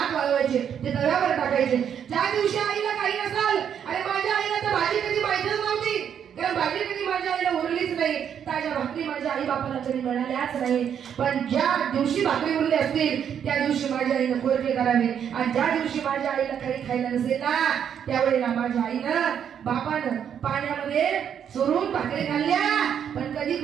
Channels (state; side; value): quieter; left; 8.5 dB